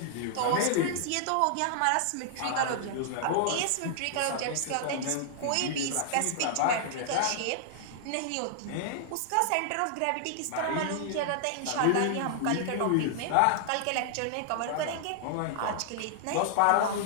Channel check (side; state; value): both; different; correlation -0.01